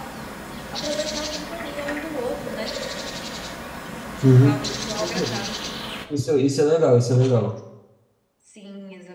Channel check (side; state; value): both; identical; correlation 1.00